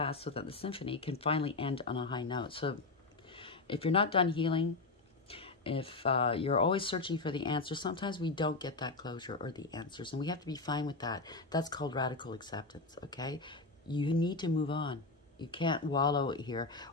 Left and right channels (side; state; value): right; quieter; 3.7 dB